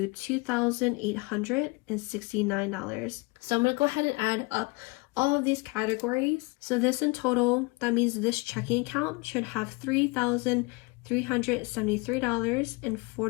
$2,869. So I'm going to go ahead and add up all of these categories. So this in total, that means this checking account should have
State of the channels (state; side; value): quieter; right; 26.3 dB